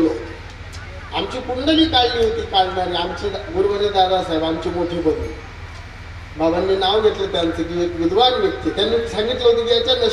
आमची कुंडली काढली होती काढणारी आमचे गुरुवर्य दादासाहेब आमचे मोठे बंधू. बाबांनी नाव घेतलं त्यांचं की एक विद्वान व्यक्ती. त्यांनी सांगितलं होतं की याच्या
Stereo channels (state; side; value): identical; both; correlation 1.00